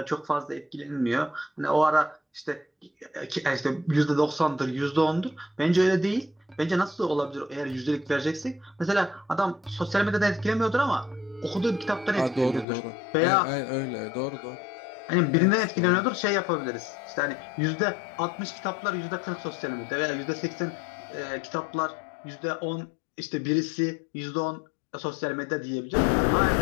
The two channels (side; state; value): right; drops out; at 12.7 s